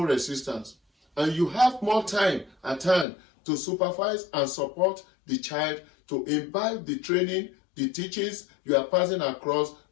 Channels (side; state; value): right; drops out; at 3.1 s